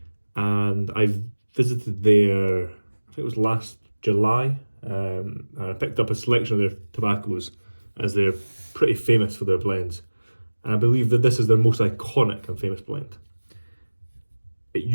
and I visited there, I think it was last July, and I picked up a selection of their tobaccos as they're pretty famous for their blends. And I believe that this is their most iconic and famous blend. It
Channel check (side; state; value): both; inverted; correlation -1.00